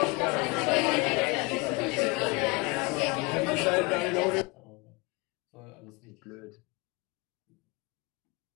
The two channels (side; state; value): right; quieter; 27.4 dB